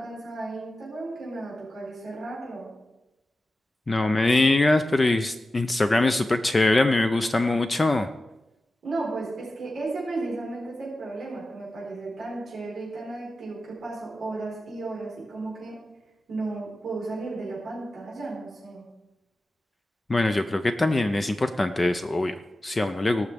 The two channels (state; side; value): normal; both; correlation 0.93